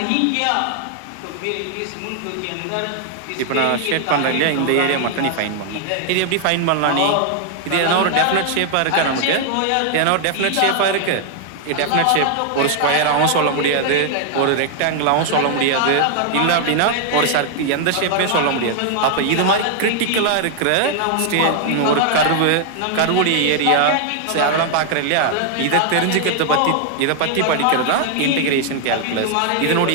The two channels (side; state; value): both; different; correlation 0.00